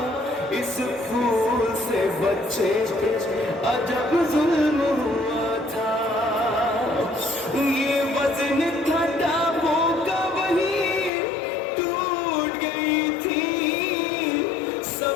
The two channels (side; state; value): right; drops out; at 11.1 s